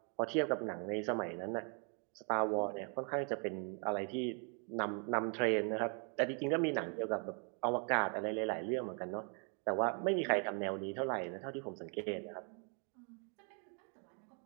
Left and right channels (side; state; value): left; quieter; 39.6 dB